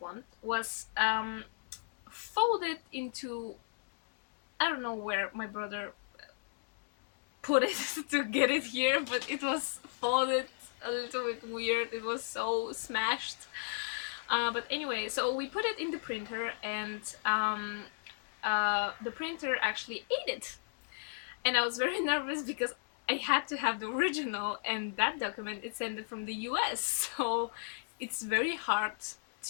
was folded into, I don't know where my brother put it to get it here, but it was folded a little bit weird. It was so smashed. But anyway, so we put it in the printer, and the printer actually ate it. And I was very nervous because I had to have the original, and that document is sent from the US. So it's very hard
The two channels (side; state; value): right; silent; digital silence